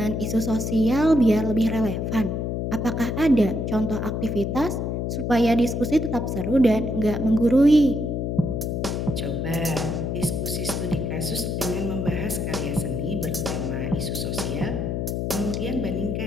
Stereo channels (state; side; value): noise; left; hum, 1 dB below the sound